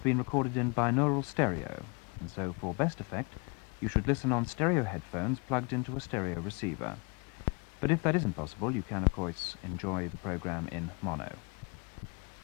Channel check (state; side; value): quieter; right; 31.0 dB